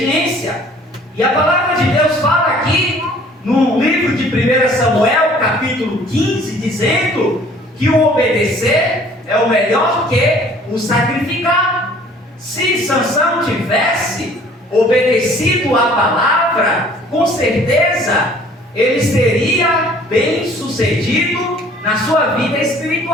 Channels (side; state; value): both; normal; correlation 0.54